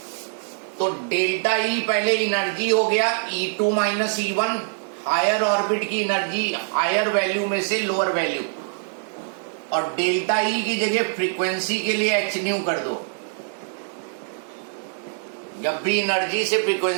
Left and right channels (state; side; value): silent; left; digital silence